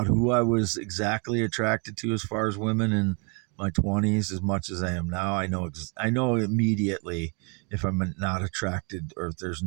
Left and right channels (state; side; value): quieter; left; 34.8 dB